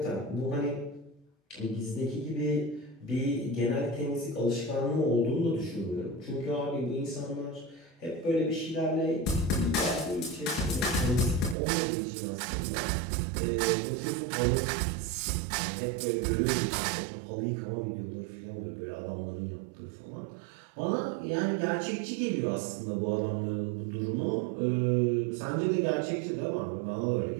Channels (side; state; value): left; drops out; at 11.6 s